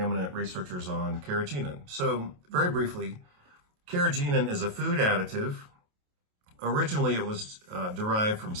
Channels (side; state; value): left; late; 28 ms